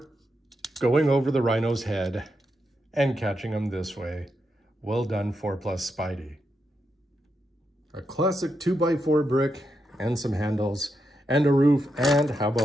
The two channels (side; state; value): both; normal; correlation 0.84